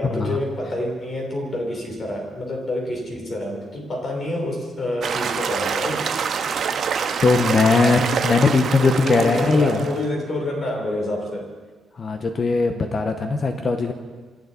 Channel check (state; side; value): normal; both; correlation 0.80